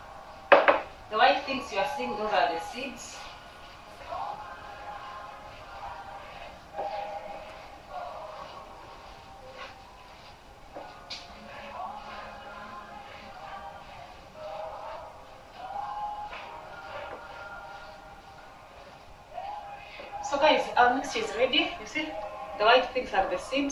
The white things you are seeing, those are the seeds. mixture is ready. You see, the white things are the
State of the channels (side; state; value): both; identical; correlation 1.00